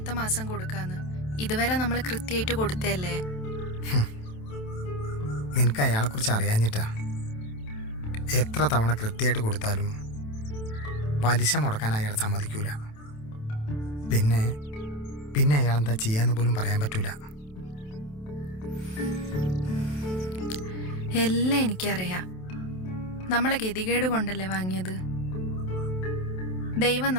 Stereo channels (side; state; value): right; late; 27 ms